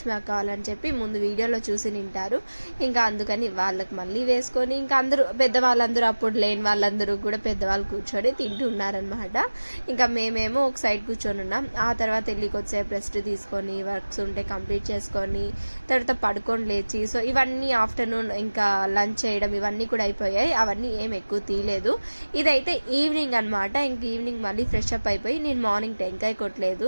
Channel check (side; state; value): both; inverted; correlation -1.00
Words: అక్క వాళ్ళని చెప్పి ముందు వీడియోలో చూసి తింటారు. ఇంకా అందుకని వాళ్ళకి మళ్ళీ వేసుకొని ఇంకా అందరూ పెద్దవాళ్ళందరూ, అప్పుడు లేని వాళ్ళందరూ కూడా పెద్దవాళ్ళు కూర్చొని తింటూ ఉన్నారనమాట. ఇంకా మేమేమో ఒక సైడ్ కూర్చొని ఉన్నాం. ఆ తర్వాత వెళ్ళి కొద్దిసేపు రెస్ట్ తీసుకొని వర్క్స్ ఉంటే కంప్లీట్ చేసుకొని తర్వాత పడుకొని లేచి, సో ఇవన్నీ ఆఫ్టర్నూన్ ఇంకా లంచ్ చేయడం ఇవన్నీ కూడా అయిపోయాయి. అవన్నీ ఏం ఎక్కువ తీయలేదు. ఇదైతే ఈవినింగ్ అనమాట. ఇంక ఈవినింగ్ మళ్ళీ ఫ్రెష్ అప్ అయిపోయి నేను మార్నింగ్ టెంకాయ కొట్టలేదు.